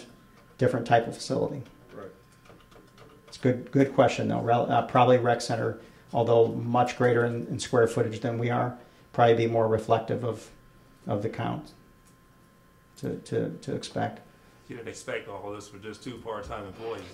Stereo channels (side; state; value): both; identical; correlation 1.00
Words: type of facility. Right. It's a good question though. Probably rec center, although much greater in square footage than we are, probably be more reflective of the count to expect. You didn't expect all this with just 2 part-time employees.